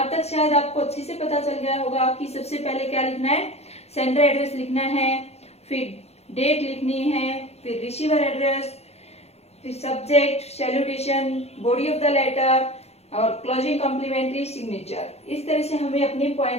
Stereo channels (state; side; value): late; right; 0.31 ms